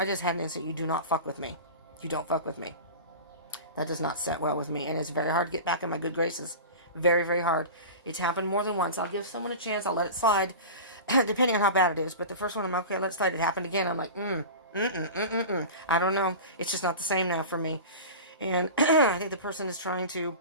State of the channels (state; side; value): inverted; both; correlation -0.32